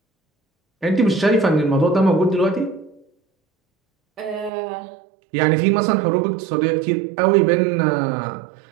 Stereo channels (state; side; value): drops out; left; at 4.5 s